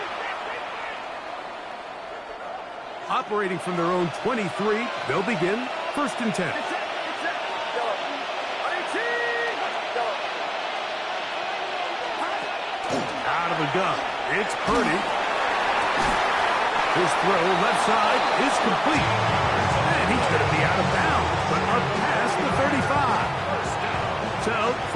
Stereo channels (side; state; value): both; identical; correlation 1.00